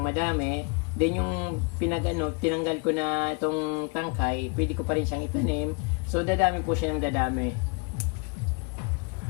madami. Then yung tinanggal ko na itong tangkay, pwede ko pa rin siyang itanim. So dadami po siya ng dadami.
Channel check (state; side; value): quieter; right; 32.5 dB